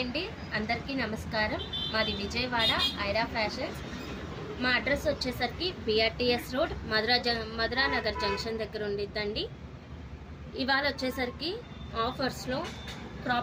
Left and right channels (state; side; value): identical; both; correlation 1.00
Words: అండి, అందరికీ నమస్కారం. మాది విజయవాడ ఐరా ఫ్యాషన్స్. మా అడ్రస్ వచ్చేసరికి BRTS road Madhura Nagar junction దగ్గర ఉండిద్దండి. ఇవాళ వచ్చేసరికి ఆఫర్స్లో